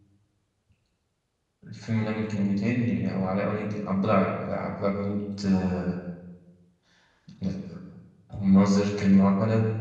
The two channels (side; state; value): both; identical; correlation 1.00